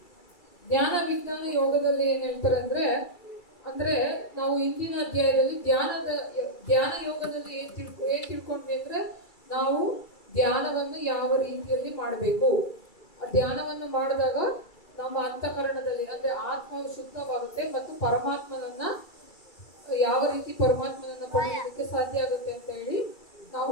ಜ್ಞಾನ ವಿಜ್ಞಾನ ಯೋಗದಲ್ಲಿ ಏನ್ ಹೇಳ್ತಾರೆ ಅಂದ್ರೆ ನಾವು ಇಂದಿನ ಅಧ್ಯಾಯದಲ್ಲಿ ಧ್ಯಾನ ಯೋಗದಲ್ಲಿ ಏನ್ ತಿಳ್ಕೊಂಡ್ವಿ ಅಂದ್ರೆ ನಾವು ಧ್ಯಾನವನ್ನು ಯಾವ ರೀತಿಯಲ್ಲಿ ಮಾಡಬೇಕು. ಧ್ಯಾನವನ್ನು ಮಾಡಿದಾಗ ನಮ್ಮ ಅಂತಃಕರಣದಲ್ಲಿ ಅಂದ್ರೆ ಆತ್ಮವು ಶುದ್ಧವಾಗುತ್ತೆ ಮತ್ತು ಪರಮಾತ್ಮನನ್ನ ಯಾವ ರೀತಿ ಪರಮಾತ್ಮನನ್ನ ಪಡೆಯೋದಕ್ಕೆ ಸಾಧ್ಯ ಆಗುತ್ತೆ ಅಂತ ಹೇಳಿ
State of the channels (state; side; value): late; right; 2.3 ms